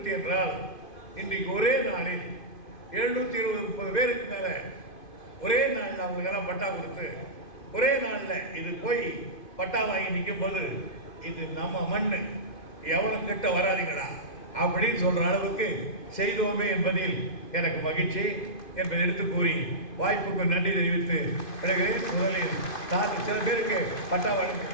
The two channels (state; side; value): late; right; 2.5 ms